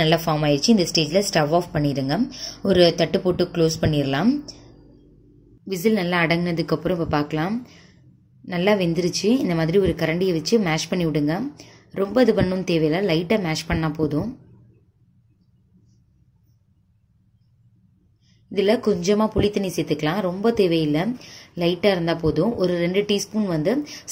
நல்லா ஃபார்ம் ஆயிடுச்சு. இந்த ஸ்டேஜில் ஸ்டவ் ஆஃப் பண்ணிடுங்க. ஒரு தட்டு போட்டு க்ளோஸ் பண்ணிடலாம். விசில் நல்லா அடங்கினதுக்கப்புறம் இப்போ பார்க்கலாம். நல்லா வெந்துருச்சு. இந்த மாதிரி ஒரு கரண்டியை வச்சு மேஷ் பண்ணி விடுங்க. ரொம்ப இது பண்ணணும் தேவையில்லை, லைட்டாக மேஷ் பண்ணால் போதும். இதில் கொஞ்சமாக புளி தண்ணி சேர்த்துக்கலாம், ரொம்ப தேவையில்லை, லைட்டாக இருந்தால் போதும். ஒரு 2 டீஸ்பூன் வந்து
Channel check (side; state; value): both; identical; correlation 1.00